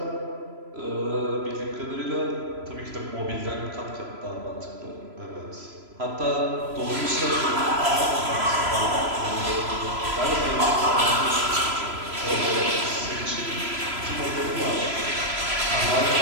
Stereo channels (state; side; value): late; left; 3.0 ms